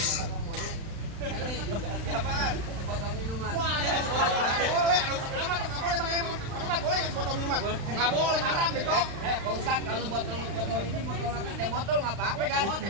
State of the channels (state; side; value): late; left; 36 ms